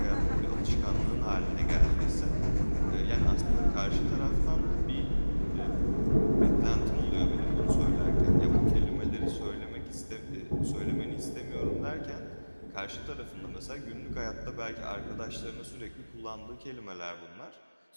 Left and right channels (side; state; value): both; inverted; correlation -1.00